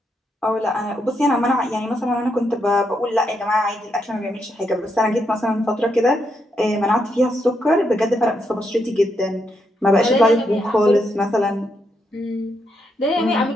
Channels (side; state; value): both; normal; correlation 0.80